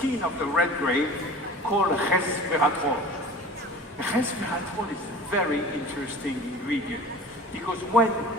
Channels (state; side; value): normal; both; correlation 0.40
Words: of the red grape called resveratrol. Resveratrol is a very interesting ingredient because when